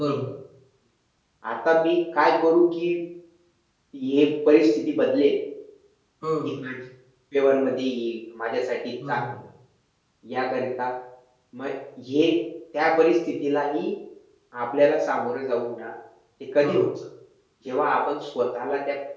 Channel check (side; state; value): both; identical; correlation 1.00